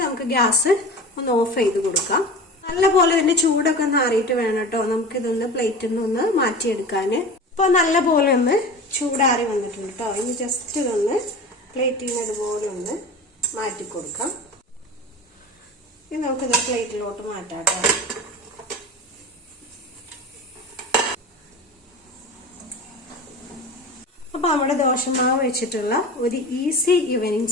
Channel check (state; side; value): normal; both; correlation 0.33